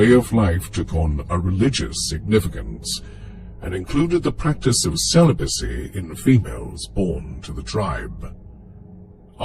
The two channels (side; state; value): both; identical; correlation 1.00